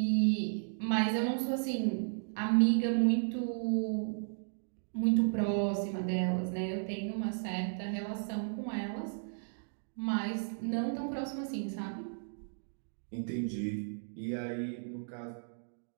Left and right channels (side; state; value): left; silent; digital silence